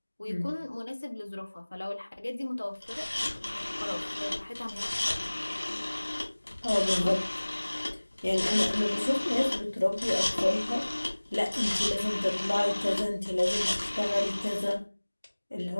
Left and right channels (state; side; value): inverted; both; correlation -1.00